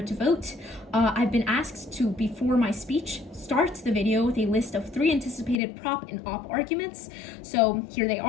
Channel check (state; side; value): drops out; right; at 5.6 s